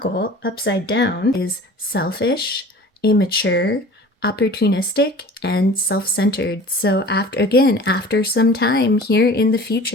upside down is selfish, immature, opportunistic, and self-centered. So after some time here in the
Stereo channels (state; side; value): normal; both; correlation 0.42